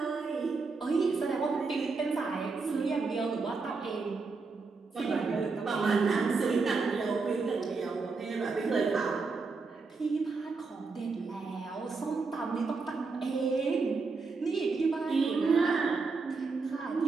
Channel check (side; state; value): left; quieter; 4.3 dB